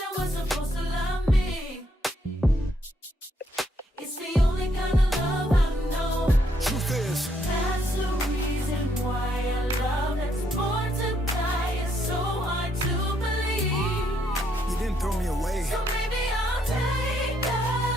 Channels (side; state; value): both; normal; correlation 0.73